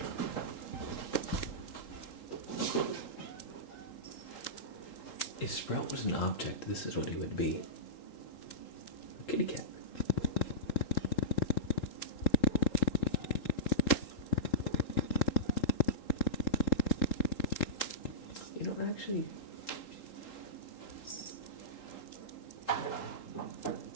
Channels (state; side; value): late; right; 3.8 ms